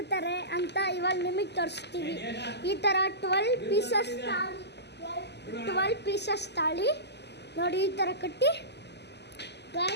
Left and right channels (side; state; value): right; late; 0.50 ms